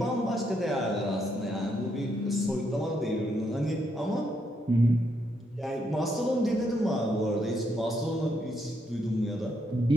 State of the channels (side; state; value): both; normal; correlation 0.77